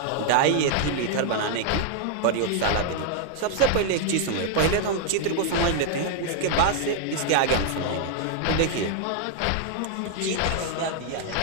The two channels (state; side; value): different; both; correlation 0.00